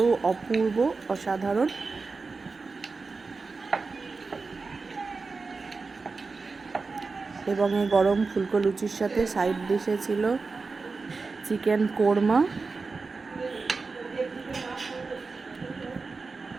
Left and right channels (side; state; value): left; quieter; 4.2 dB